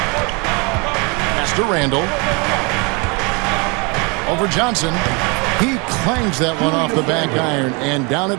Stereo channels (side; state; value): left; quieter; 30.2 dB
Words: Pass to Randall. Over Johnson. He clangs that one off the back iron, and down